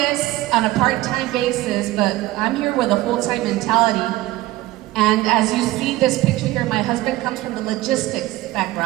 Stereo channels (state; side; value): quieter; left; 17.4 dB